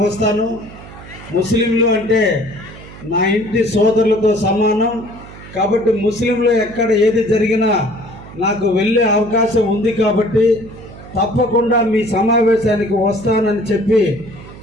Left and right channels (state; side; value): noise; right; hum, 17 dB below the sound